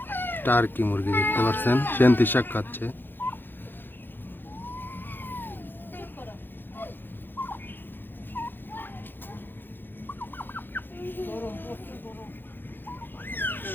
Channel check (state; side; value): late; right; 0.097 ms